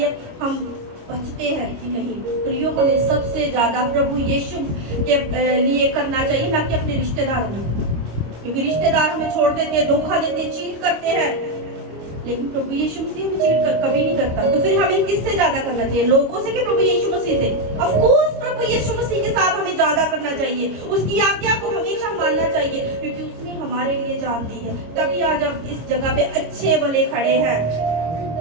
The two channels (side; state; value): left; late; 25 ms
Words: है हम बचते हैं कि नहीं। प्रियो, हमें सबसे ज्यादा प्रभु यीशु के लिए करना चाहिए, ना कि अपने रिश्तेदारों में, क्योंकि रिश्तेदार हमें छोड़ देते हैं, धोखा देते हैं, चीट करते हैं, लेकिन प्रभु यीशु मसीह हमें चीट कभी नहीं करता। तो फिर हमें किससे ज्यादा करना चाहिए? लोगों से कि प्रभु यीशु मसीह से? ऑफ कोर्स प्रभु यीशु मसीह के साथ हमें ज्यादा करना चाहिए, उसकी आज्ञा को हमेशा मानना चाहिए, क्योंकि उसने हमारे लिए जान दी है। तभी आज हम इस जगह पे अच्छे भले खड़े हैं।